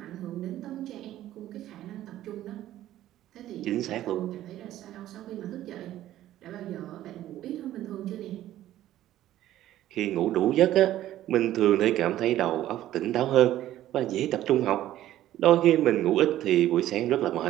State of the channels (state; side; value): quieter; left; 13.4 dB